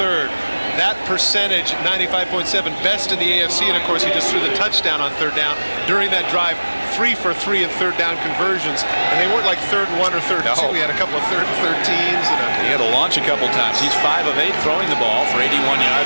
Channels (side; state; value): both; inverted; correlation -1.00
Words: That percentage, 95.7, best in the AFC, and of course he just threw the touchdown on 3rd down during that drive. 3 for 3 in 3rd down conversions, and they weren't like 3rd and 1 or 3rd and 2. He had a couple of 3rd and 13s. He had to launch a couple times. He's 5 of 8 throwing the ball for 81